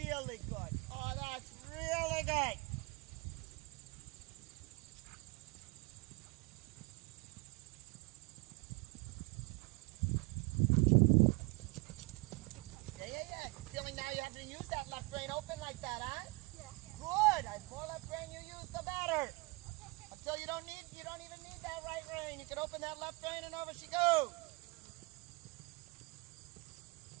good. Oh, that's really good. Yeah. Feeling now you have to use that left rein open like that, huh? Yeah. Good. The more left rein you use, the better. Until you don't even need that right rein. You can open that left rein and over she goes.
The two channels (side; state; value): left; quieter; 26.5 dB